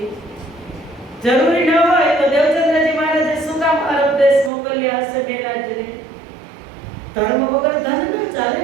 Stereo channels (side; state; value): left; drops out; at 4.5 s